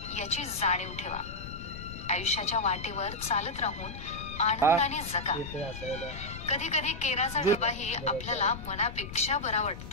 याची जाणीव ठेवा. आयुष्याच्या वाटेवर चालत राहून आनंदाने जगा. कधी कधी केराचा डबाही आपल्याला मनापेक्षा बरा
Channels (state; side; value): noise; left; rumble, 10 dB below the sound